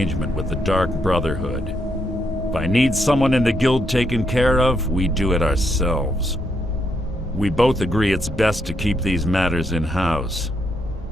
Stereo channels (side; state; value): both; normal; correlation 0.78